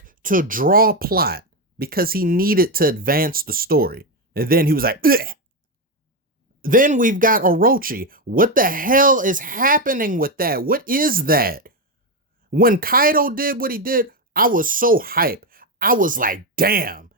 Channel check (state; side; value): normal; both; correlation 0.09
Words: to draw plot because he needed to advance the story. And then he was like, ugh. Then we've got Orochi. What the hell is happening with that? What is that? When Kaido did what he did, I was so hyped. I was like, damn,